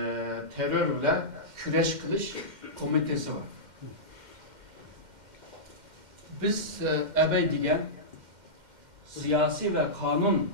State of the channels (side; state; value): left; late; 2.1 ms